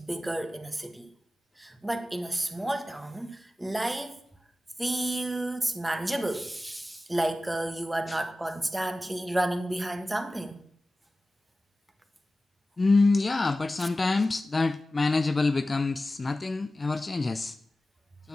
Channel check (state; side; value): normal; both; correlation 0.96